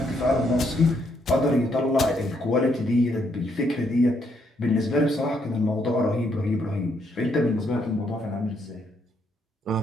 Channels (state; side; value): normal; both; correlation 0.74